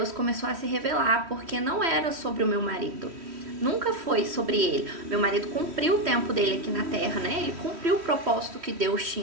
começou a se revelar, porque não era sobre o meu marido. Nunca foi sobre ele. Meu marido cumpriu o tempo dele aqui na terra, né? Ele cumpriu o propósito que Deus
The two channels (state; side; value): late; left; 3.1 ms